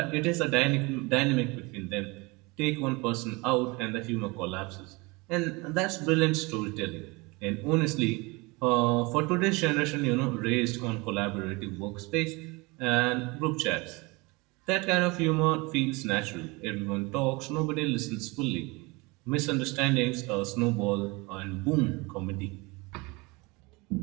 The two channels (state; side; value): quieter; left; 25.7 dB